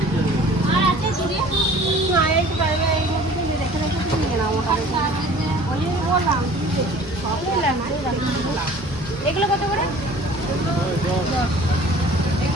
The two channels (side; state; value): both; normal; correlation 0.48